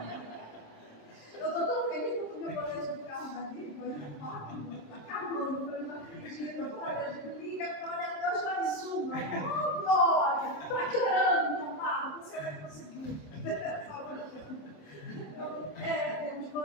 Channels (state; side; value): late; right; 27 ms